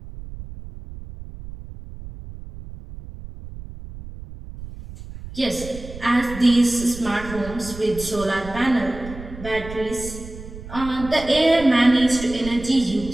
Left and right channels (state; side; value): noise; right; rumble, 13 dB below the sound